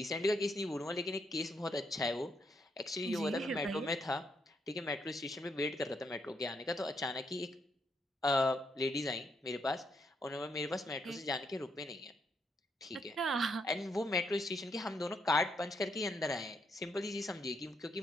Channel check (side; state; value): both; normal; correlation 0.77